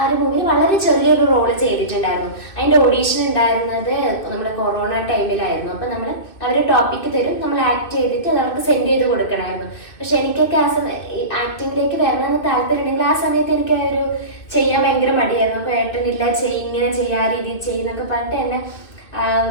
ഒരു മൂവിയിൽ വളരെ ചെറിയൊരു റോള് ചെയ്തിട്ടുണ്ടായിരുന്നു. അതിൻ്റെ ഓഡീഷൻ ഉണ്ടായിരുന്നത് നമ്മുടെ കൊറോണ ടൈമിലായിരുന്നു. അപ്പം അവർ ടോപ്പിക്ക് തരും, നമ്മൾ ആക്ട് ചെയ്തിട്ട് അത് അവർക്ക് സെൻഡ് ചെയ്ത് കൊടുക്കണമായിരുന്നു. പക്ഷെ എനിക്കൊക്കെ ആക്ടിങ്ങിലേക്ക് വരണമെന്ന് താല്പര്യമുണ്ടെങ്കിൽ ആ സമയത്ത് എനിക്ക് ഒരു ചെയ്യാൻ ഭയങ്കര മടിയായിരുന്നു. അപ്പോൾ ഏട്ടനില്ല ഇങ്ങനെ ചെയ്യാ രീതിയിൽ ചെയ്യുന്നൊക്കെ പറഞ്ഞിട്ട് എന്നെ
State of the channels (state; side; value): late; right; 2.6 ms